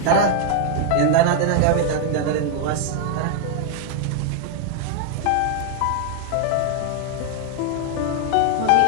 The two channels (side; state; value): both; different; correlation 0.00